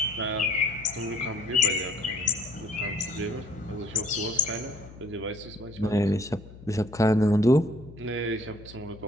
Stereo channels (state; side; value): noise; left; hum, 18 dB below the sound